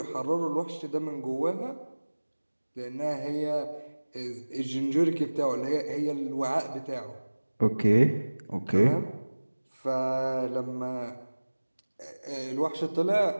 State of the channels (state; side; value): inverted; both; correlation -1.00